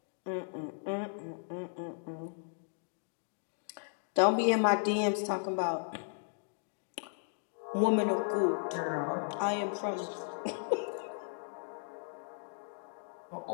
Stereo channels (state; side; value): silent; right; digital silence